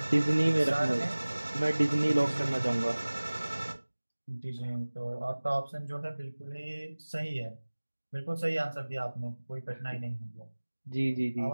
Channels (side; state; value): both; inverted; correlation -1.00